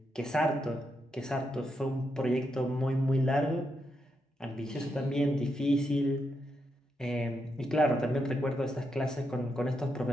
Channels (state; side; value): normal; both; correlation 0.82